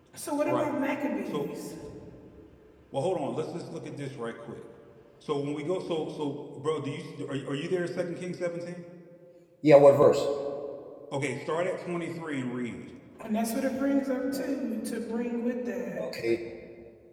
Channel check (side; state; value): both; identical; correlation 1.00